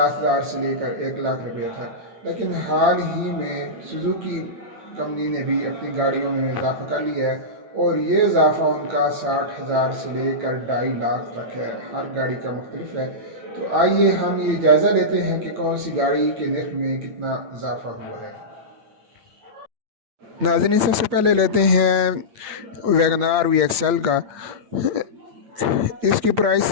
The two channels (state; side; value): late; left; 8.8 ms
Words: से लेकर 1 लाख रुपये था। लेकिन हाल ही में सुजुकी कंपनी ने भी अपनी गाड़ियों में इजाफ़ा कर लिया है और ये इजाफ़ा उनका 60,000 से लेकर 2.5 लाख तक है। हर गाड़ी का मुख्तलिफ है। तो आइए हम ये जायज़ा लेते हैं कि कौन सी गाड़ी के निर्ख में कितना इजाफ़ा हुआ है। नाज़रीन, सबसे पहले लेते हैं वैगनार VXL का। इसकी प्राइस